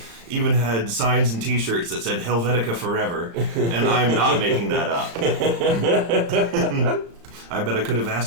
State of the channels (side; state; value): left; late; 35 ms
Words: even had signs and T-shirts that said Helvetica Forever, and I'm not making that up. I bet I could have